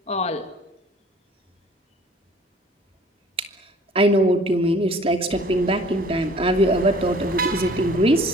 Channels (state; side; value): normal; both; correlation 0.52